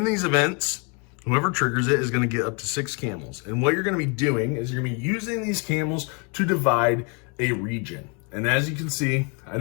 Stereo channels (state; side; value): quieter; right; 33.4 dB